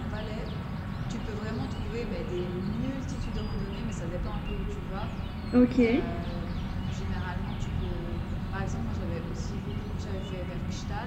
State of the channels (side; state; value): both; identical; correlation 1.00